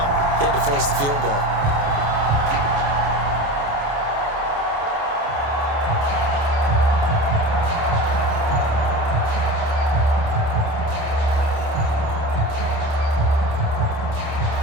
They had to force the field goal.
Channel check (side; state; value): left; late; 28 ms